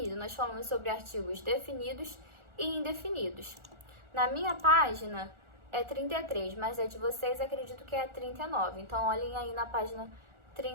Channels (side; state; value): left; late; 1.4 ms